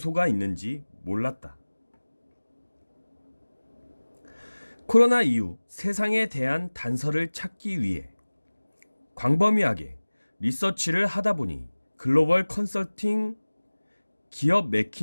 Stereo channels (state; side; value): inverted; both; correlation -1.00